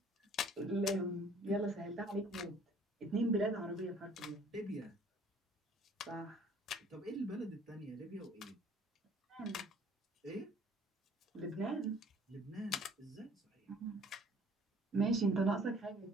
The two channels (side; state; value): both; normal; correlation 0.55